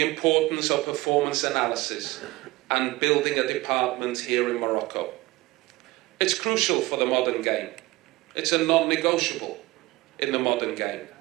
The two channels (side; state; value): left; quieter; 20.4 dB